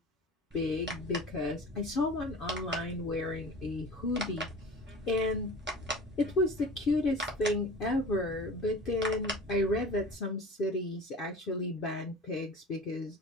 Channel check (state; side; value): normal; both; correlation 0.38